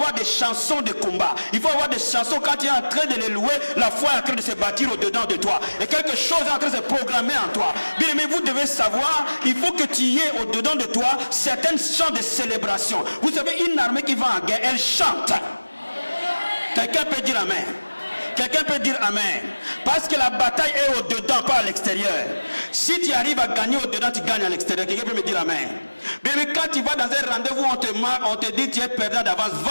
des chansons de combat. Il faut avoir des chansons quand tu es en train de les louer, la foi est en train de se bâtir au-dedans de toi. Et quelque chose est en train de se programmer en toi. Bien, mais vous devez savoir, il faut que tu y aies au-dedans de toi certains chants de célébration. Vous savez, une armée qui va en guerre, elle chante. Quelqu'un peut dire Amen. Quelqu'un peut dire Amen. Parce que la bataille est au-dedans, pas à l'extérieur. Si tu arrives à gagner au-dedans, tu gagnes à l'extérieur. Quelqu'un peut me dire Amen. Mais quand tu vas dans un rendez-vous, on te dit tu es perdant d'avance,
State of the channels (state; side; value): inverted; both; correlation -1.00